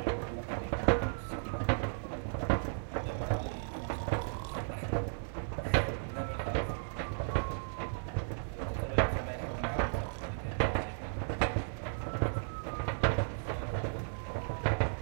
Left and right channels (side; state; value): left; silent; digital silence